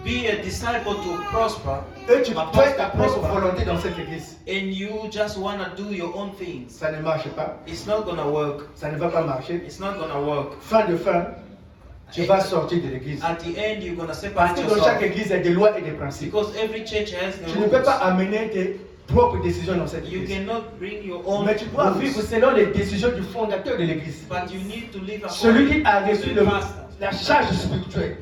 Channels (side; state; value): both; identical; correlation 1.00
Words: be a disciple to prosper et tu fais ta propre volonté dans cette église. and you just want to do your own things. Ça ne marche pas. It's not gonna work. Ça ne va pas marcher. It's not gonna work. Fin de fin, tu vas sortir de l'église. At the end, you're gonna Parce separate que dans chaque yourself. église, il y a des lois et des principes. Because every church has the Tu ne peux pas rules. amener tes propres décisions dans cette You église. cannot bring your own Mais tu dois rules, vivre selon les décisions du fondateur de l'église. but you need to live Celui qui according a to reçu the pastor. la charge spirituelle.